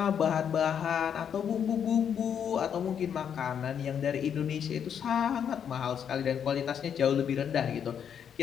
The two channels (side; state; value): right; quieter; 8.2 dB